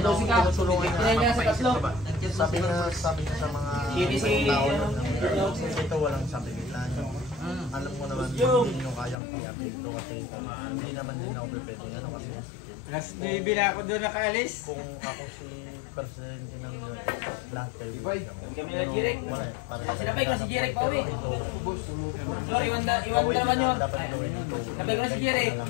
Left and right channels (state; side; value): drops out; right; at 9.2 s